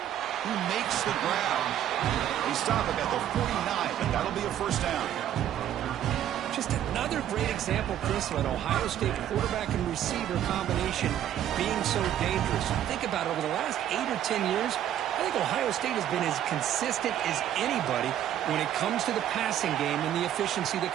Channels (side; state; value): left; quieter; 11.1 dB